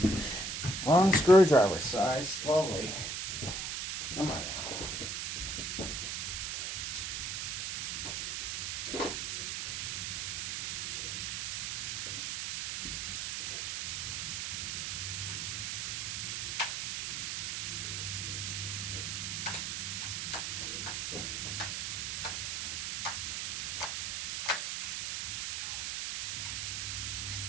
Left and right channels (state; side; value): noise; right; hiss, 2 dB below the sound